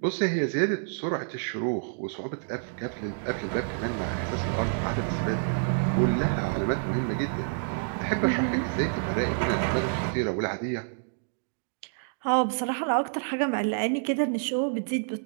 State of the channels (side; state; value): left; silent; digital silence